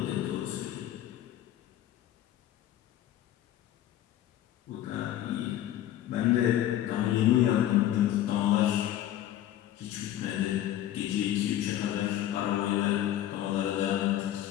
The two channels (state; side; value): quieter; right; 12.4 dB